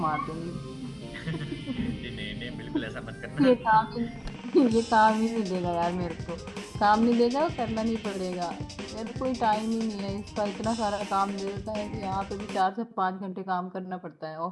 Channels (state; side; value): identical; both; correlation 1.00